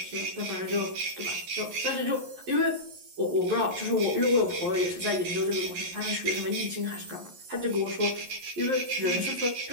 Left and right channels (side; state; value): left; late; 11 ms